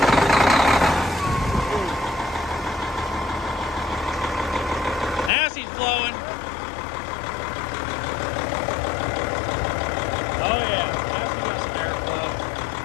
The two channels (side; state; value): right; drops out; at 5.3 s